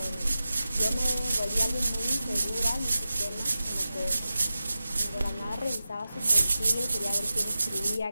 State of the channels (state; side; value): inverted; both; correlation -0.94